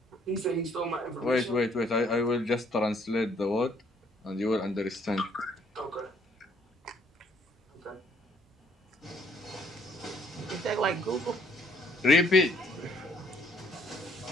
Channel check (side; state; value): both; normal; correlation 0.65